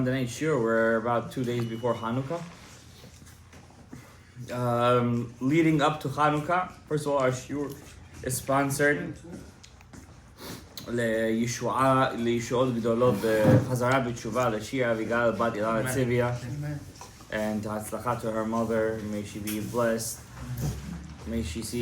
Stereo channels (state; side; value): identical; both; correlation 1.00